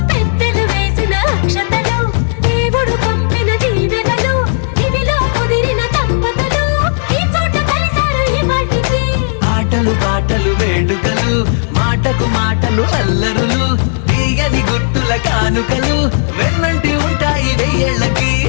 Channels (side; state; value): right; silent; digital silence